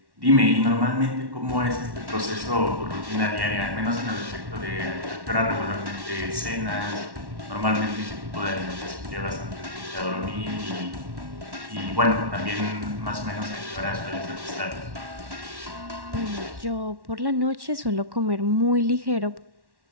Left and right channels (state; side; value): late; left; 1.1 ms